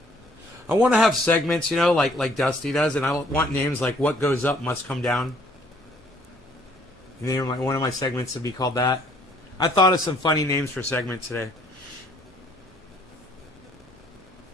want to have segments, you know, like Dusty does, and I want names like "What Goes Up Must Come Down." And one of my segments to be called that. I thought of some funny names for segments today.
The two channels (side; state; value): both; normal; correlation 0.61